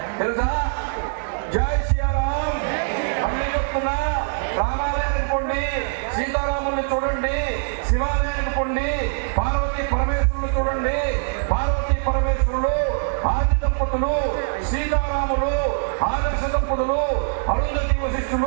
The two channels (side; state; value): left; silent; digital silence